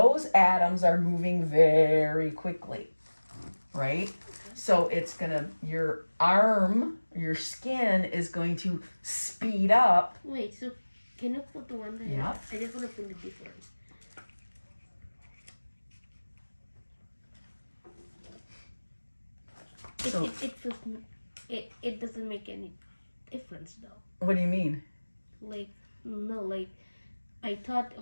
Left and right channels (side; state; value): both; inverted; correlation -1.00